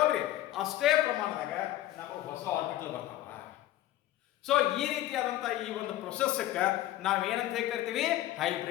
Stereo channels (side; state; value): right; quieter; 14.4 dB